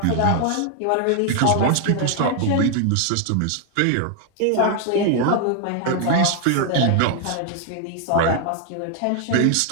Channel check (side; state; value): both; different; correlation 0.00